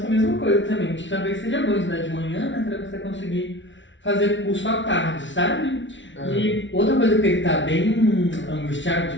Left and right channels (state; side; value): late; right; 0.55 ms